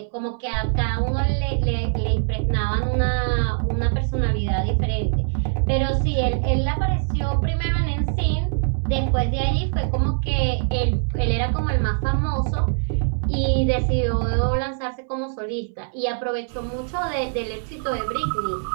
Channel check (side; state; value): left; silent; 63 dB below the other